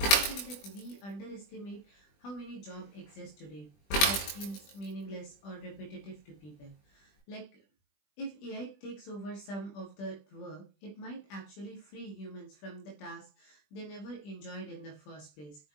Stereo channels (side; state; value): right; late; 20 ms